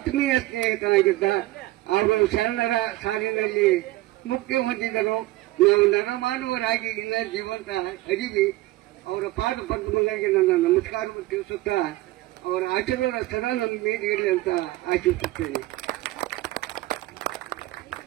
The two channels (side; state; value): left; quieter; 18.2 dB